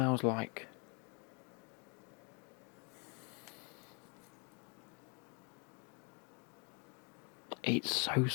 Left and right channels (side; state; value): right; quieter; 35.4 dB